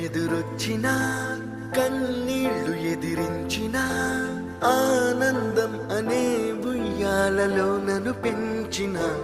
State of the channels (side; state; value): both; identical; correlation 1.00